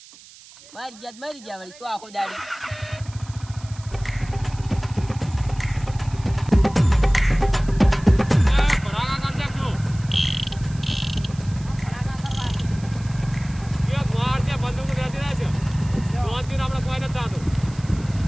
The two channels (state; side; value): noise; right; hiss, 21 dB below the sound